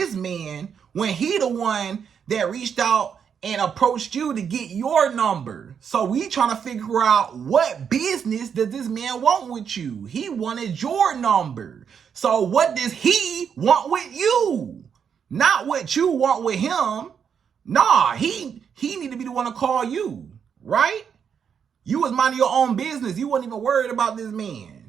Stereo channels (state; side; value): quieter; left; 7.3 dB